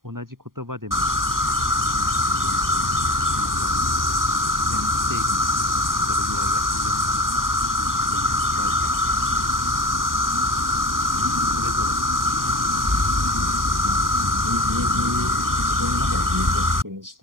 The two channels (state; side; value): late; left; 0.91 ms